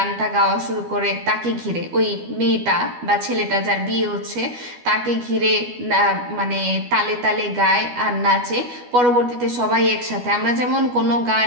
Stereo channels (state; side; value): late; left; 12 ms